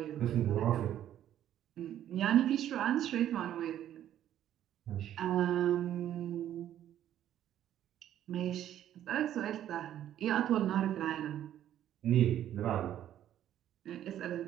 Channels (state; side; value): quieter; left; 11.4 dB